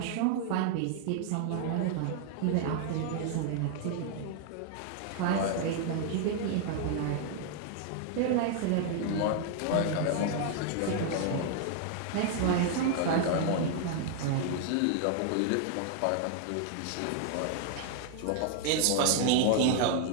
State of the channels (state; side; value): different; both; correlation 0.00